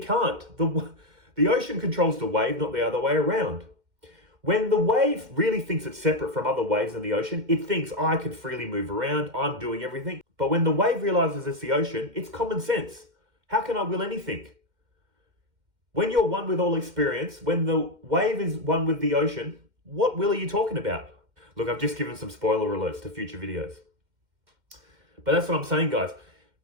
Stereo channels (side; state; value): left; late; 2.1 ms